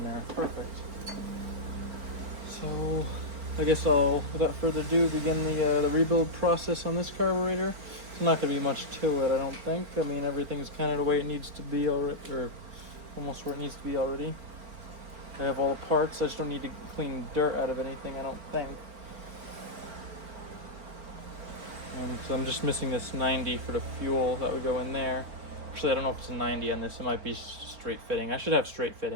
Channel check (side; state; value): left; late; 4.4 ms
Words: there. Perfect. So I guess I'll, without further ado, begin the rebuild process on this carburetor. It's not going to be much to it, I don't think. I mean, everything's kind of the way it needs to be already, or almost where it needs to be already. I have all the parts. I just don't need to clean dirt out of anything, I don't think. And so I'm just missing this 90 for the fuel that would go in there. Actually, I don't know if it's a 90 on this. It might be straight fitting. I should have straight